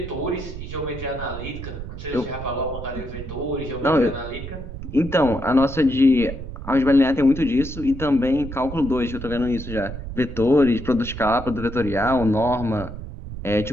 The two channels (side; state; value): right; noise; rumble, 10 dB below the sound